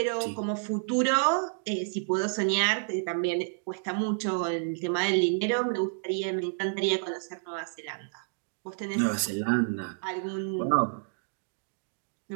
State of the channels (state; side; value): silent; left; digital silence